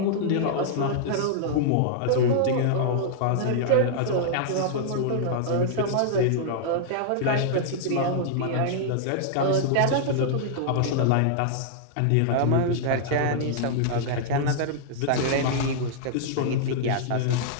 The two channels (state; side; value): different; both; correlation -0.01